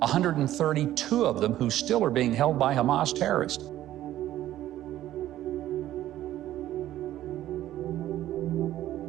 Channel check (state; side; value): quieter; left; 13.4 dB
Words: of them who still are being held by Hamas terrorists.